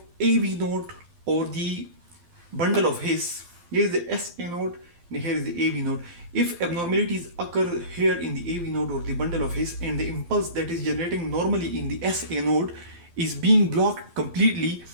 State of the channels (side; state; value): left; late; 12 ms